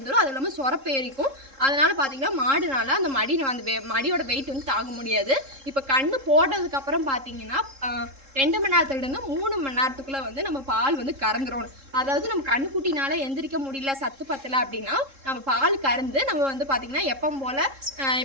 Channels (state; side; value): late; left; 3.7 ms